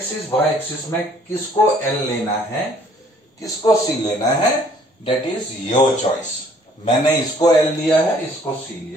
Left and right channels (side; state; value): both; normal; correlation 0.59